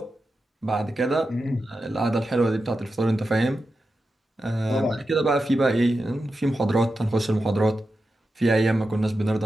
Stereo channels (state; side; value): normal; both; correlation 0.90